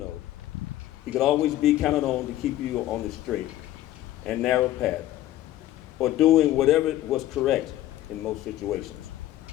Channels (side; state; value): right; quieter; 14.1 dB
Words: he could always be counted on to keep you on the straight and narrow path, or doing whatever was correct in most situations.